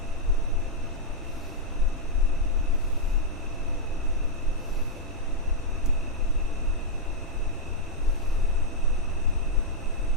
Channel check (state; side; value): normal; both; correlation -0.05